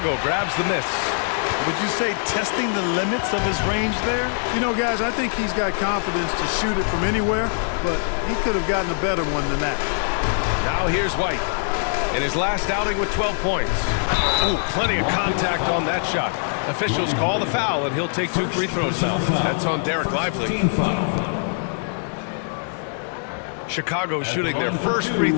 grabs the miss. Would you say testing the limits of his range there? You know, guys, I think he's got confidence to shoot it from anywhere, but he could have gotten a better one than that. Now here's White. In his last outing with 12 points. Ooh, plenty of contact on that shot. Officials call the foul, and he'll take 2 free throws now. That's on Derek Lively. Chicago shooting their first free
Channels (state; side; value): silent; right; digital silence